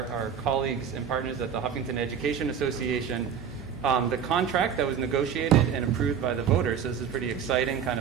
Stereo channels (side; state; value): left; quieter; 7.7 dB